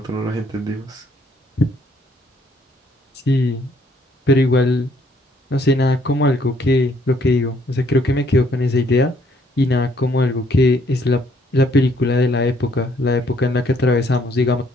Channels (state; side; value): normal; both; correlation 0.66